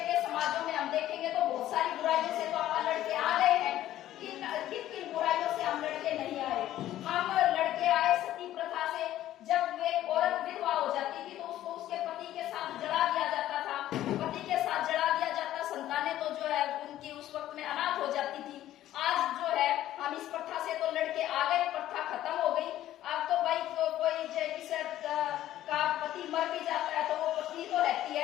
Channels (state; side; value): quieter; right; 13.3 dB